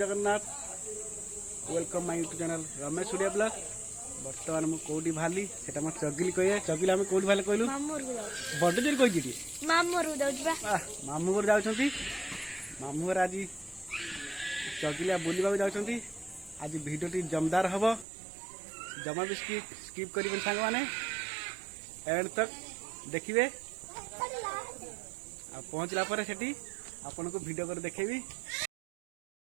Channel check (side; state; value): left; drops out; at 18.1 s